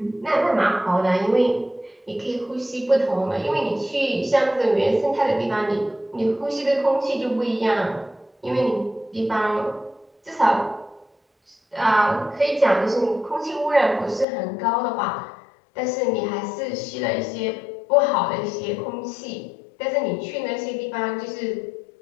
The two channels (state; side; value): drops out; right; at 14.2 s